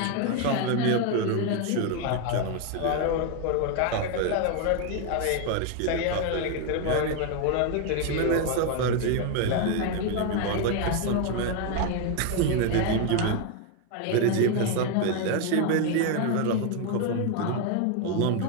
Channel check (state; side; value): different; both; correlation 0.01